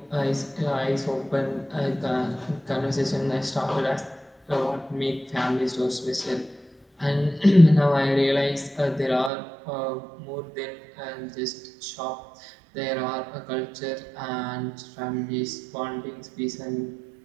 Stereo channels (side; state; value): left; drops out; at 9.3 s